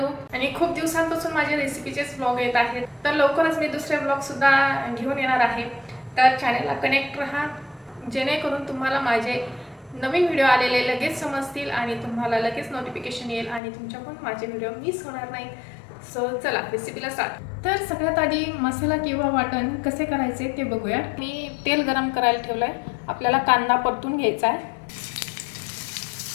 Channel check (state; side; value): drops out; right; at 13.6 s